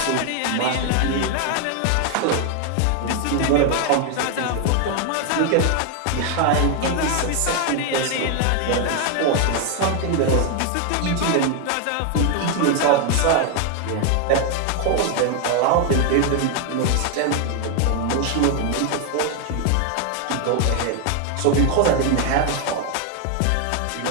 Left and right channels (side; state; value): both; different; correlation 0.01